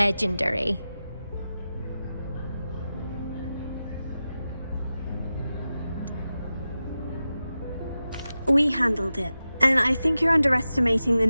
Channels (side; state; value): both; inverted; correlation -0.93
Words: We handled it, and I think you're underestimating the